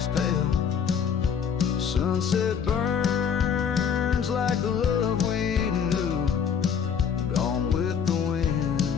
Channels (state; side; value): quieter; right; 7.2 dB